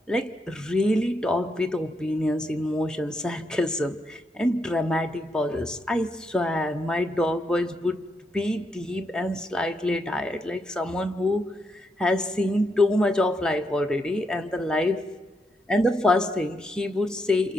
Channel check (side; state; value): both; normal; correlation 0.80